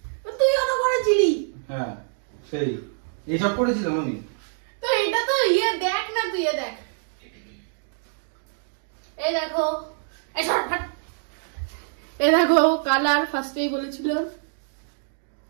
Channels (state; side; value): silent; left; digital silence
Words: তুইও তো করেছিলি। হ্যাঁ, সেই এইসব করেছিলাম আমি। তো এটা তো ইয়ে দেখ না, তুই এ দেখ, এই দেখো, এই সর ফাট, এই দেখো কালার ফার্স্টেই বলেছিল।